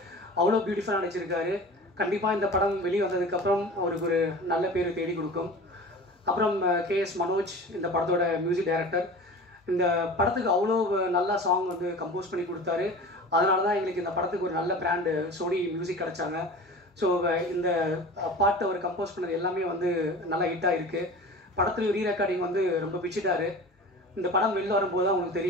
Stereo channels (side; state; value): both; normal; correlation 0.37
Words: அவ்வளோ பியூட்டிஃபுல்லாக நடிச்சிருக்காரு. கண்டிப்பாக இந்த படம் வெளியே வந்ததுக்கப்புறம் அவருக்கு ஒரு நல்ல பேர் தேடி கொடுக்கும். அப்புறம் KS மனோஜ் இந்த படத்தோட மியூசிக் டைரக்டர். இந்த படத்துக்கு அவ்வளோ நல்லா சாங் வந்து கம்போஸ் பண்ணி கொடுத்தாரு. அதனால தான் எங்களுக்கு இந்த படத்துக்கு ஒரு நல்ல பிராண்டு சோனி மியூசிக் கிடச்சாங்க. ஸோ இந்த பாட்டு அவர் கம்போஸ் பண்ணது எல்லாமே வந்து நல்லா ஹிட்டாக இருக்குது. படத்துலையும் ரீரெக்கார்டிங் வந்து ரொம்ப பிடிச்சிட்டாரு. இந்த படம் வெளில வரும்போது தான் உங்களுக்கு